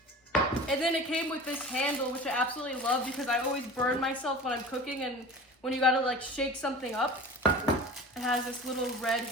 And then it came with this handle, which I absolutely love because I always burn myself when I'm cooking, and when you gotta like shake something up, it has this little red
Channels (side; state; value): both; normal; correlation 0.37